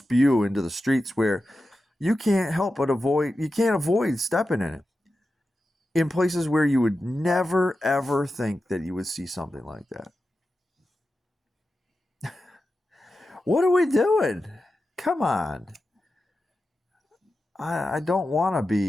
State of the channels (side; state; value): both; normal; correlation 0.92